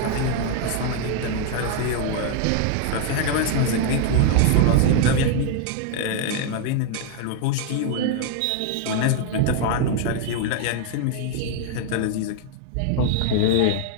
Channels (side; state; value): both; different; correlation 0.00